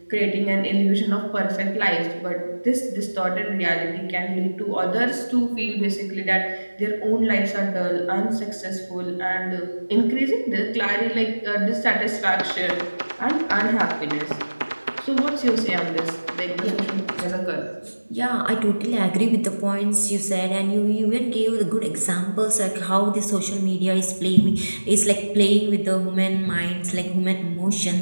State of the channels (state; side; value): inverted; both; correlation -1.00